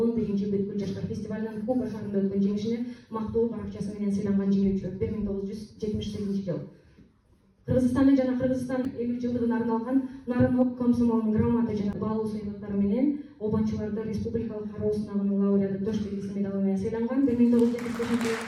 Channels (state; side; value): identical; both; correlation 1.00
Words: бүткүл жаштар фестивалынын Куба шаарында өткөн жеңишине мактоо баракчасы менен сыйланган жеңүүчү 1978 жыл. Кыргызстанда жана Кыргызстан 50 жылдыгына арналган Нарын ок комсомолунун грамота жана баалуу сыйлыктары менен обончуларды республикалык кароо сынагынын лауреаты Тош белгиси медалы менен сыйланган. 1975 жылы